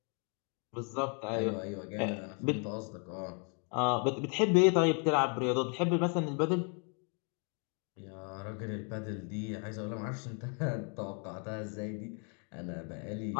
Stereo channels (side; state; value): right; quieter; 39.4 dB